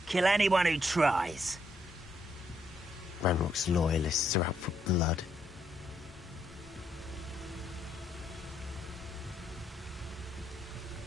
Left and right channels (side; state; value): both; normal; correlation 0.75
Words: Kill anyone who tries. Ranrock's loyalists are out for blood.